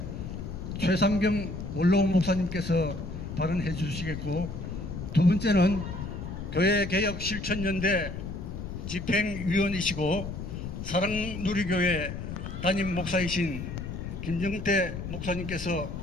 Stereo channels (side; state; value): left; noise; rumble, 7 dB below the sound